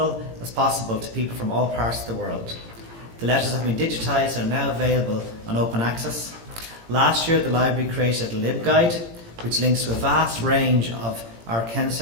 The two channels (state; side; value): late; left; 18 ms